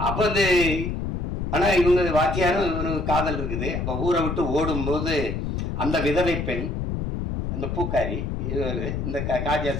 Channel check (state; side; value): noise; left; rumble, 2 dB below the sound